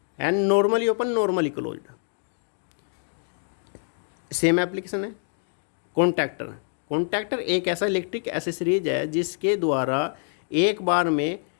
and normally open, normally closed. Same application है। कॉन्टैक्टर, कॉन्टैक्टर एक ऐसा इलेक्ट्रिक एसेसरीज है जिसके द्वारा एक बार में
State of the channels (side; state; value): right; silent; 57 dB below the other